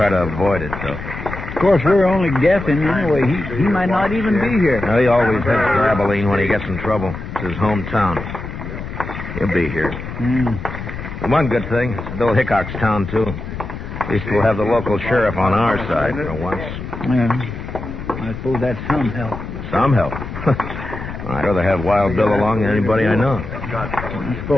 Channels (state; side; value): noise; left; rumble, 9 dB below the sound